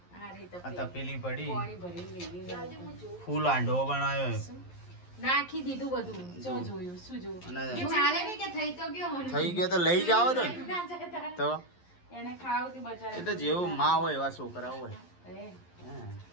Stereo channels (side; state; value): right; late; 11 ms